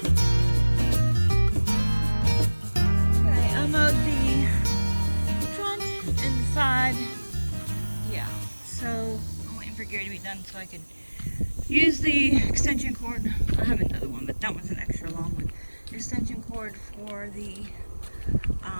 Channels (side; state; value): both; inverted; correlation -1.00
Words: Gary to be done so I could use the extension cord. I have another one, but that one's an extra long one. Extension cord for the